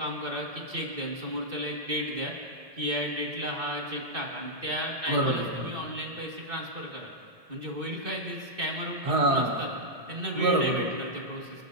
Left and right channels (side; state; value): left; late; 1.7 ms